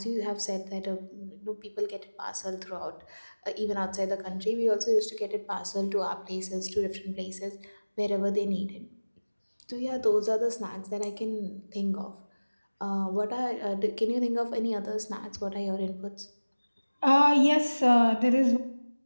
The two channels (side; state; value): both; inverted; correlation -1.00